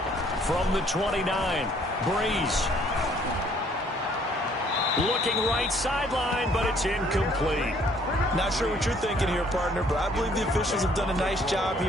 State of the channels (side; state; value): both; normal; correlation 0.62